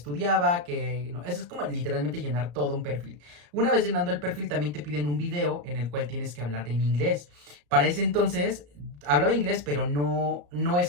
que no, eso es como literalmente llenar todo un perfil. Una vez llenando el perfil también te piden un video en el cual tienes que hablar en inglés. Para ese entonces hablaba inglés, pero no es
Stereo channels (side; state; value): left; late; 34 ms